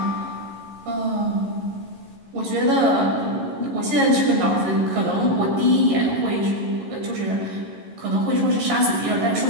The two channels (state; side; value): late; left; 11 ms